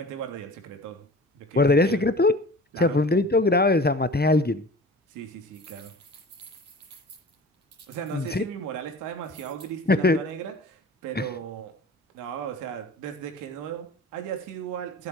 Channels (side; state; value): both; normal; correlation 0.40